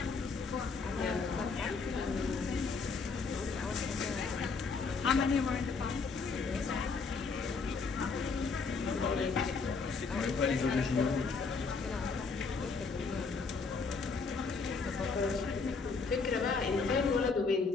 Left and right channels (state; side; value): quieter; right; 4.6 dB